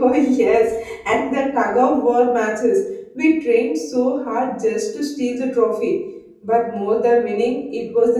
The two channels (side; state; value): both; identical; correlation 1.00